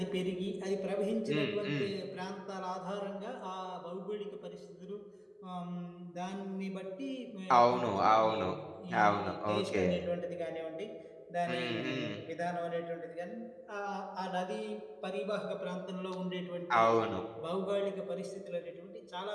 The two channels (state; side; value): identical; both; correlation 1.00